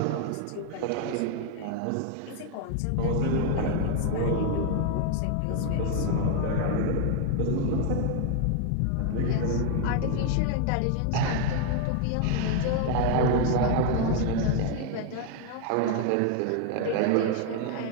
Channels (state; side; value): different; both; correlation 0.01